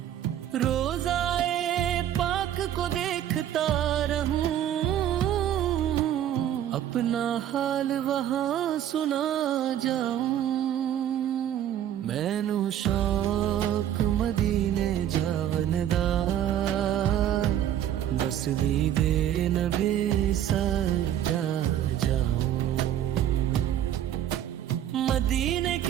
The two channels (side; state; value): left; quieter; 10.9 dB